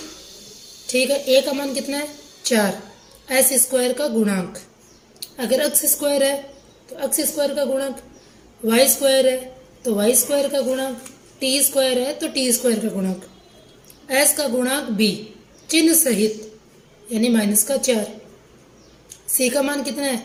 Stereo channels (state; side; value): identical; both; correlation 1.00